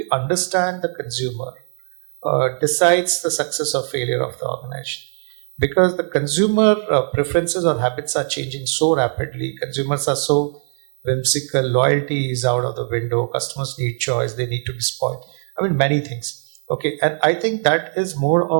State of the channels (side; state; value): left; silent; digital silence